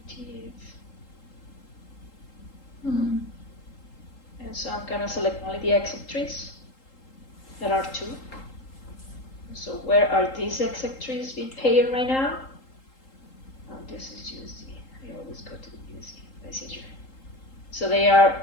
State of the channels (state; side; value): late; right; 3.8 ms